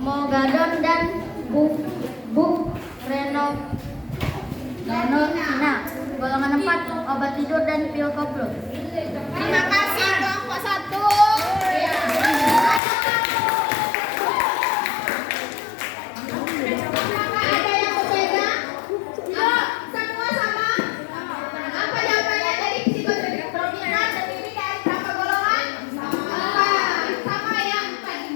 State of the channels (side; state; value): right; drops out; at 12.8 s